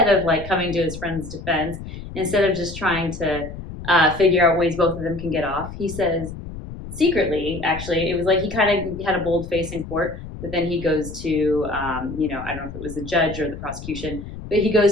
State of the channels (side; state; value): left; noise; rumble, 11 dB below the sound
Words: of like coming to his friend's defense, instead of just trying to figure out ways both of them can get off, he says secretly, actually, it was like he kind of had a bold face in court, but then he goes to, I don't know if it was the judge or the prosecution, but he